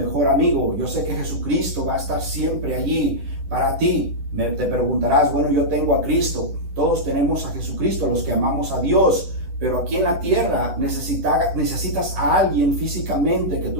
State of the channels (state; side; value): late; left; 11 ms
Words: amigo. Yo sé que Jesucristo va a estar siempre allí para ti. Te preguntarás, bueno, yo tengo a Cristo. Todos tenemos a Jesucristo, los que amamos a Dios. Pero aquí en la tierra necesitas a alguien físicamente que